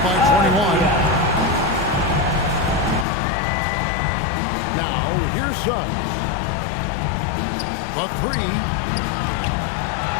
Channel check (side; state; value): right; drops out; at 3.1 s